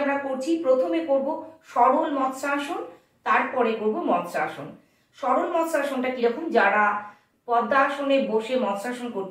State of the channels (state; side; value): identical; both; correlation 1.00